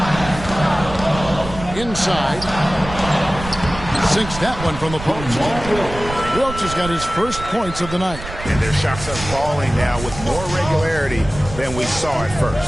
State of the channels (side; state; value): right; noise; rumble, 11 dB below the sound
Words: Inside. Sinks that one from the post. Wilkes has got his first points of the night. And their shots are falling now with more regularity than we saw at